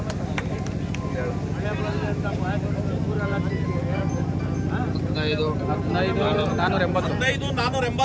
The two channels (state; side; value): identical; both; correlation 1.00